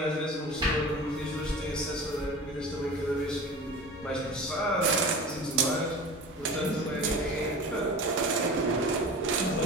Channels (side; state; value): both; normal; correlation 0.35